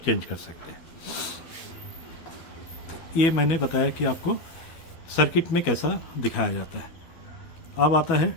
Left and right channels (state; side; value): late; right; 12 ms